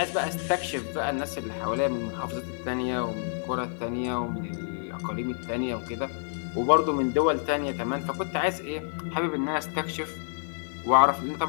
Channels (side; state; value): right; silent; digital silence